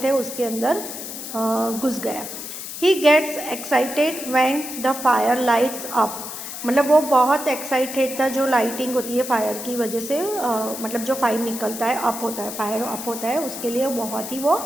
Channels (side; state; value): left; noise; hiss, 9 dB below the sound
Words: है उसके अंदर घुस गया. He gets excited when the fire lights up. मतलब वो बहुत एक्साइटेड था जो लाइटिंग होती है फायर की वजह से मतलब जो फायर निकलता है अप होता है फायर अप होता है उसके लिए बहुत ही वो